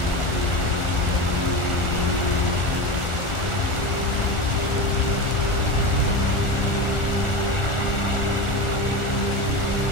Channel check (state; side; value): late; right; 1.4 ms